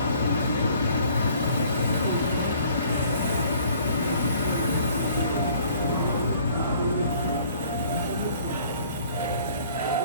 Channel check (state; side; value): inverted; both; correlation -0.56